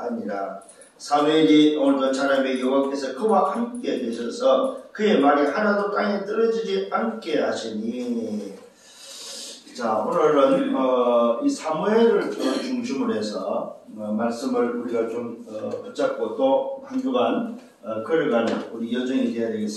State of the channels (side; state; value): both; identical; correlation 1.00